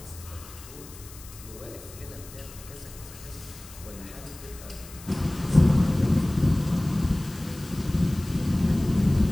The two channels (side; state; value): left; noise; hiss, 18 dB below the sound